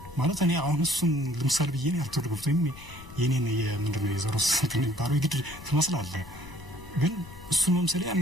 ማለት እኔ አሁን እሱን ለምሳሌ ብዬ ነው አልተወደድኩትም የኔን የምንድነው የዘሮስ እንትን ግድ ትመስላለህ ግን እሱን መምሰል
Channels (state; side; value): noise; left; rumble, 17 dB below the sound